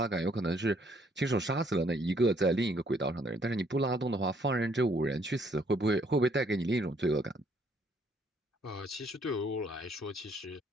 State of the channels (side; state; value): both; normal; correlation 0.66